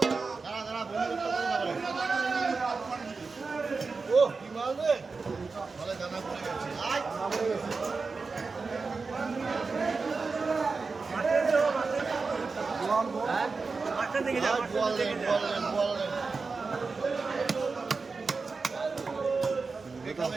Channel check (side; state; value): left; quieter; 4.4 dB